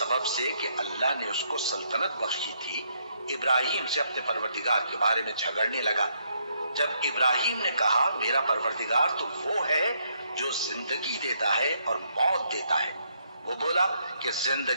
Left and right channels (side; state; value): both; inverted; correlation -0.73